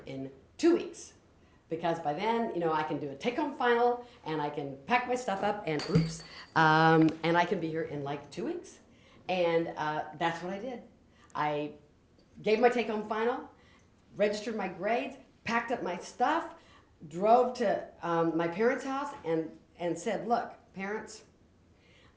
in 2 weeks. Because by then, I can do a take-home final, and I can pack my stuff up, and and I can be here in like 2 weeks." And that's what I did. I gave my take-home final, registered my grades, packed up my stuff, drove to my parents' house, and said, "Look, parents,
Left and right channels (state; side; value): identical; both; correlation 1.00